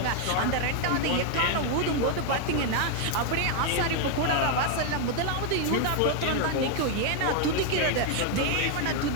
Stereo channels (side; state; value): both; different; correlation 0.00